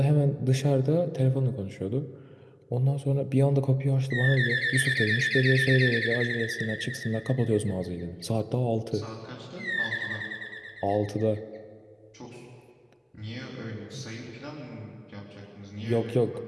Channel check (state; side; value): identical; both; correlation 1.00